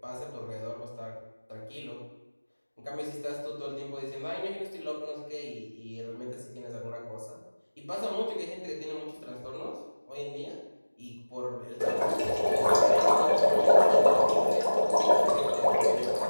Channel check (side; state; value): both; inverted; correlation -1.00